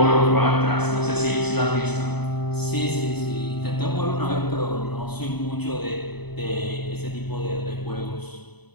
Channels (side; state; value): right; late; 0.98 ms